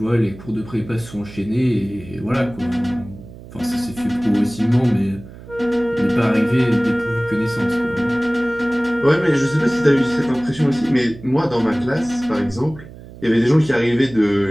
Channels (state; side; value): noise; right; hum, 17 dB below the sound